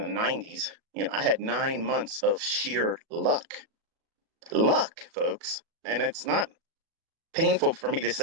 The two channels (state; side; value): late; left; 37 ms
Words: 90s, I had 9 months of sheer luck, folks. And it's not painful for me to